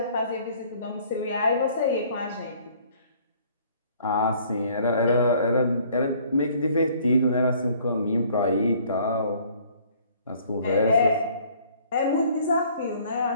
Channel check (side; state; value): both; inverted; correlation -0.58